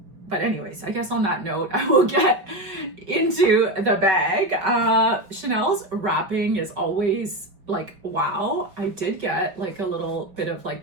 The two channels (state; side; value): late; left; 5.1 ms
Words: But anyways, I guess on that note, I will get into the bag. Chanel's wrapping is always like, wow. I did get like a little bit of like